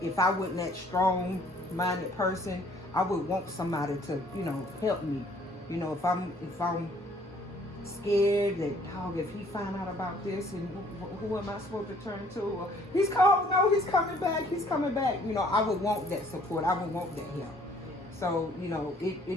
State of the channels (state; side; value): normal; both; correlation 0.59